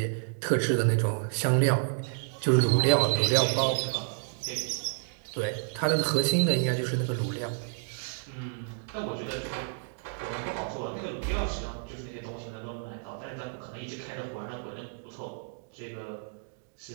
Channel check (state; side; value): silent; left; digital silence